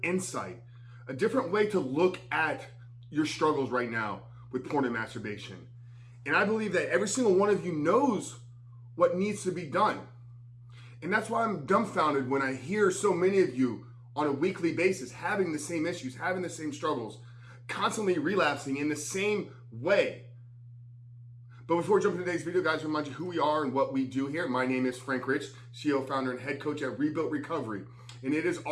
insight, a different way to look at your struggles right now with porn and masturbation. And I believe that every single one of you knows what needs to be done. And that's why I'm dumbfounded when I hear so many of you on a weekly basis having the same issues, having the same struggles, constantly relapsing in the same way. But before we jump into today's video, guys, remind you who we are and what we do here. My name is Frank Rich, CEO, founder, and head coach at Rebuilt Recovery. And it is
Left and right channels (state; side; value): identical; both; correlation 1.00